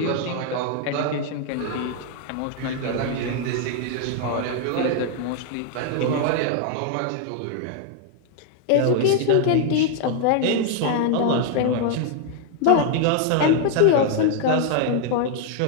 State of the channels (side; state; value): both; different; correlation 0.00